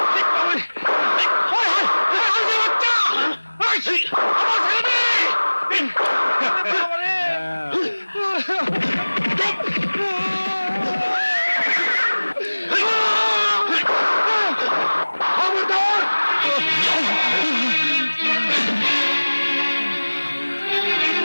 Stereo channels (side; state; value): both; inverted; correlation -1.00